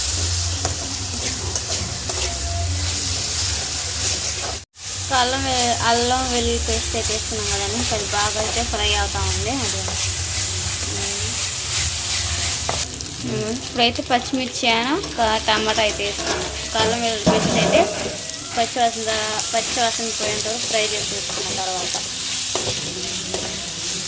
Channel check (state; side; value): identical; both; correlation 1.00